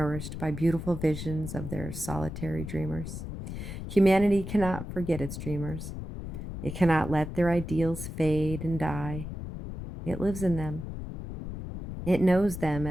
by beautiful visions of their solitary dreamers. Humanity cannot forget its dreamers. It cannot let their ideals fade and die. It lives in them. It knows them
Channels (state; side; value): noise; left; rumble, 8 dB below the sound